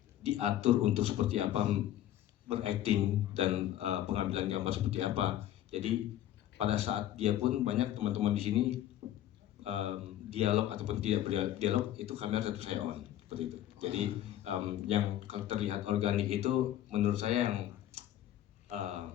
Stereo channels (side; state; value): right; quieter; 12.5 dB